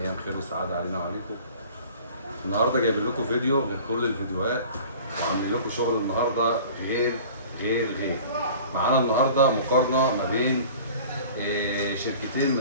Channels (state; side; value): inverted; both; correlation -0.44